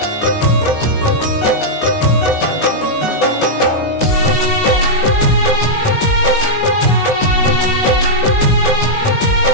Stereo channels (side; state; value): right; late; 19 ms